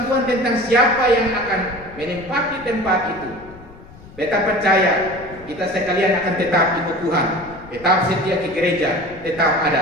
Tuhan tentang siapa yang akan menempati tempat itu, beta percaya kita sekalian akan tetap ikut Tuhan, tetap setia ke gereja, tetap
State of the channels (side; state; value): left; noise; rumble, 20 dB below the sound